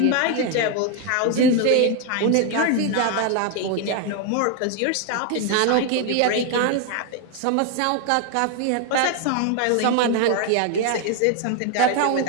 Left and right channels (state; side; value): different; both; correlation 0.01